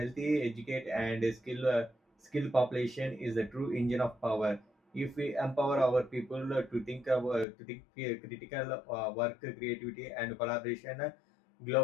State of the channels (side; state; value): right; drops out; at 7.5 s